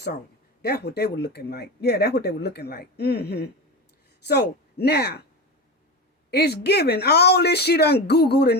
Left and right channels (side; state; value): both; normal; correlation 0.23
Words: on. That's what they were looking like. Yeah, that's what they were looking like. So now, it's given all this she done Googled